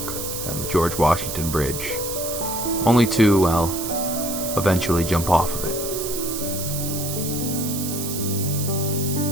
down the George Washington Bridge, only to, well, eventually jump off of it.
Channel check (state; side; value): noise; right; hiss, 5 dB below the sound